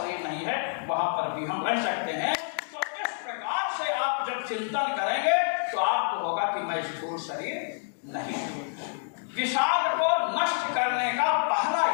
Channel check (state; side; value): silent; right; digital silence